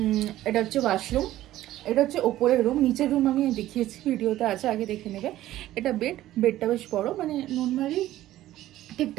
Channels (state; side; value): quieter; left; 14.4 dB